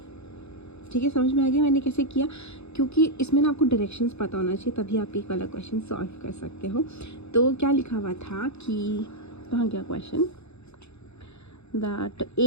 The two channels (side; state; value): right; late; 0.80 ms